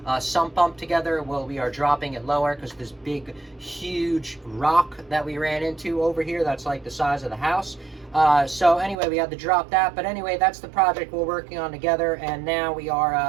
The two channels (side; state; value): left; drops out; at 9.0 s